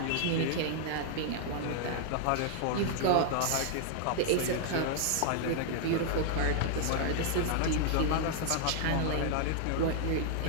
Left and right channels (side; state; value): both; different; correlation 0.00